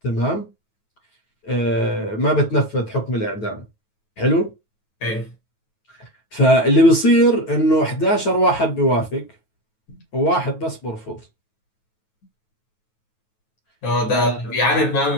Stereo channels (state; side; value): late; right; 9.3 ms